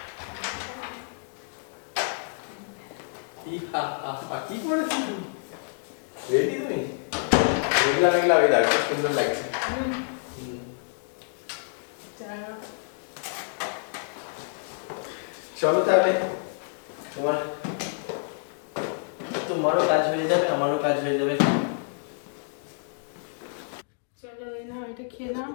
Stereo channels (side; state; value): right; silent; digital silence